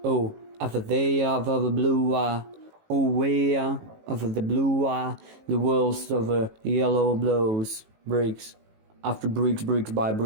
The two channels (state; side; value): late; left; 18 ms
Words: oh, over there, over the blue, oh, where over the blue, the world's over yellow blows, bricks. After bricks by